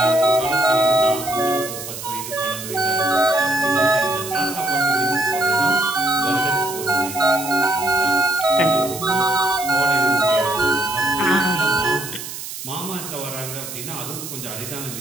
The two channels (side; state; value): right; noise; hiss, 9 dB below the sound